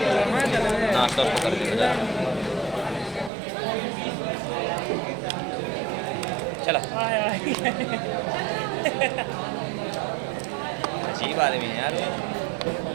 नाश्ता उसको कर देगा, चला अजीब आदमी है यार।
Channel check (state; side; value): drops out; left; at 3.3 s